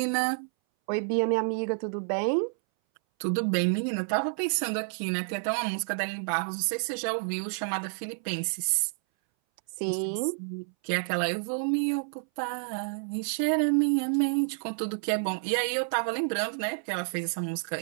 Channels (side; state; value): left; silent; 58 dB below the other